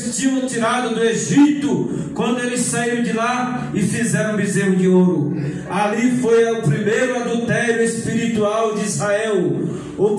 tinham tirado do Egito, quando eles saíram de lá e fizeram um bezerro de ouro. Ali foi o primeiro adultério espiritual de Israel, o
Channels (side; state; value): both; identical; correlation 1.00